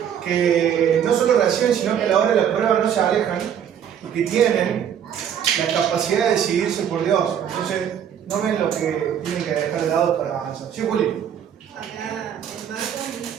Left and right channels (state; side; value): quieter; left; 9.0 dB